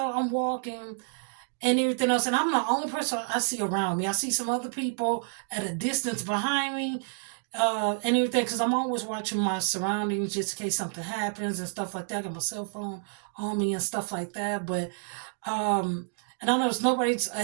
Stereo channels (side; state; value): left; silent; digital silence